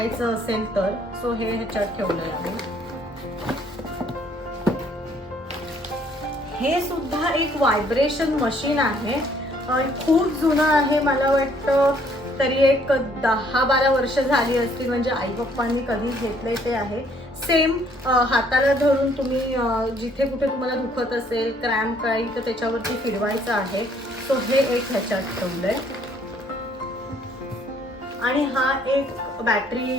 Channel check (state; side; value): normal; both; correlation 0.63